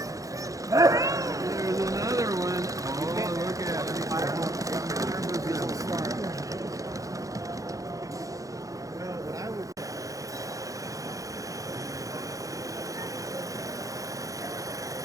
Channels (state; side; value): late; left; 0.16 ms